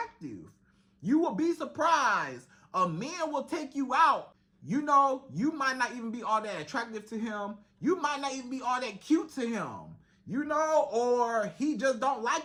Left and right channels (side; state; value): both; identical; correlation 1.00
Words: You will be surprised. A man will take you out. You know, you might not even be all that attractive to him. You might not even be all that cute to him. You know, or he just don't